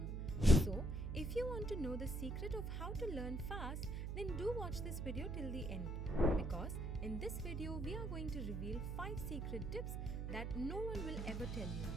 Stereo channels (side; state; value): right; noise; hum, 3 dB below the sound